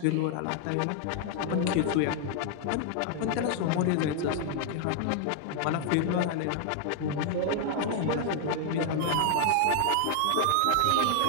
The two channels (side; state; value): both; different; correlation 0.00